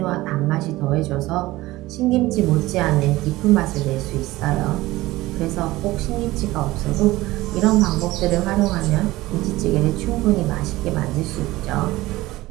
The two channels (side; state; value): left; quieter; 18.3 dB